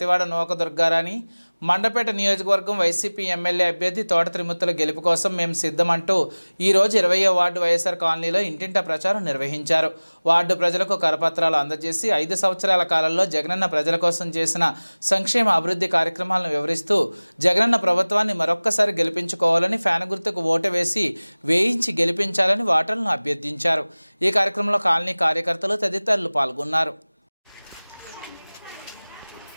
నూక దుర్గారాణి మండపేట నియోజకవర్గం వైసీపీ ఎమ్మెల్యే అభ్యర్థి తోట త్రిమూర్తుల గెలుపు కోసం మేము సిద్ధమంటూ ఈరోజు 20వ వార్డు వైఎస్ఆర్ కాలనీలో ఇంటింటా ప్రచారం నిర్వహించారు. వార్డు ప్రజలకు కరపత్రాలు అందజేసి 5 సంవత్సరాల కాలంలో జగనన్న ప్రజల కోసం చేసిన సంక్షేమ అభివృద్ధి కార్యక్రమాలను వివరిస్తూ జగనన్న ప్రభుత్వాన్ని మరొక్కసారి గెలిపించుకోవాలని ఫ్యాన్ గుర్తుకు ఓటు వేసి వేయించి గెలిపించాలని ఓటర్లను అభ్యర్థించారు. ఈ కార్యక్రమంలో కాలనీ కార్యకర్తలు తదితరులు పాల్గొన్నారు.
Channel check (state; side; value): inverted; both; correlation -1.00